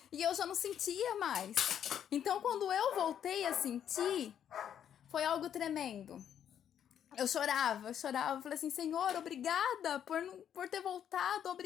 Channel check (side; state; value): right; quieter; 9.4 dB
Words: E eu já não sentia mais. Então, quando eu voltei a sentir, foi algo tremendo. Eu chorava, falei assim, Senhor, obrigada por ter voltado,